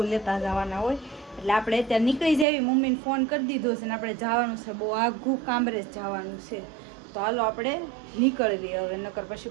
લેતા જવાના હોય, એટલે આપણે અત્યારે નીકળી જઈએ. મમ્મીને ફોન કરી દીધો છે ને આપણે જવાનું છે, બહુ આઘું કામરેજ જવાનું છે. તો હાલો આપણે નીકળવી હવે, નકર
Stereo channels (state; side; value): drops out; left; at 2.5 s